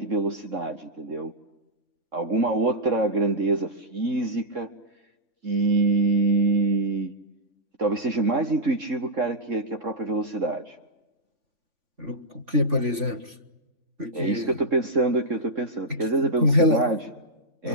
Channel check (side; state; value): left; late; 3.5 ms